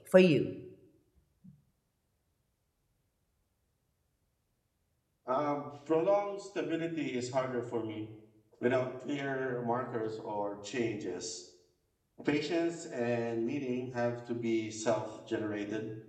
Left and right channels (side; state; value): both; identical; correlation 1.00